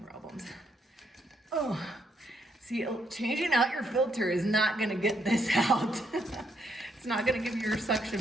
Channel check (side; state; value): both; normal; correlation 0.75